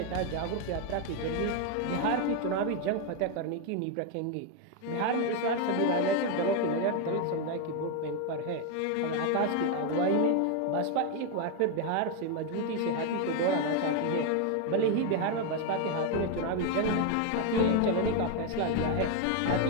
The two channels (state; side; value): different; both; correlation 0.01